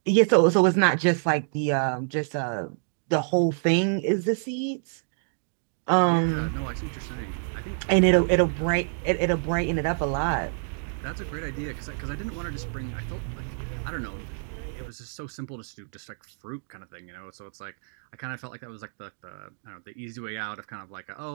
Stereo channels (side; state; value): left; silent; digital silence